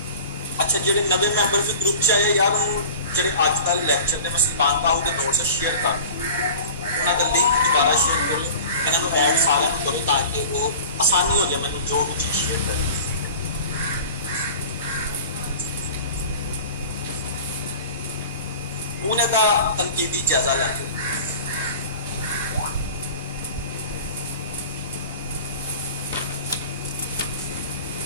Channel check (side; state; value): both; inverted; correlation -0.39